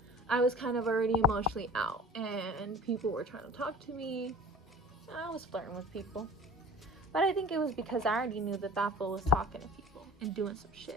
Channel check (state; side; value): normal; both; correlation 0.41